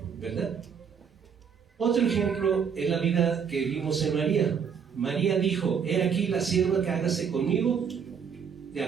¿verdad? Otro ejemplo es la vida que vimos en María. María dijo, he aquí la sierva que hágase conmigo de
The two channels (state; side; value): quieter; left; 7.0 dB